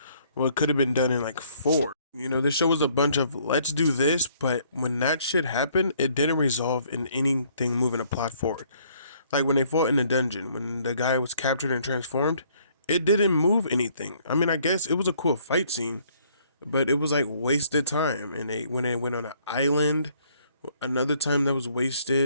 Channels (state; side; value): inverted; both; correlation -0.63